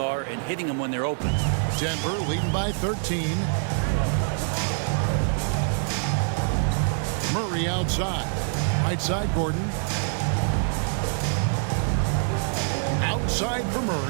and hitting them when they're open. Denver leading by 13. Murray outside. Right side, Gordon. Outside for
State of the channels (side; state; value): left; silent; digital silence